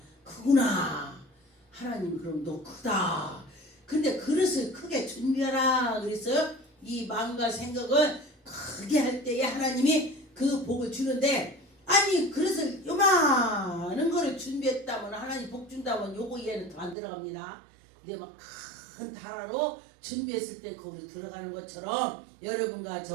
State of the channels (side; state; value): left; drops out; at 16.9 s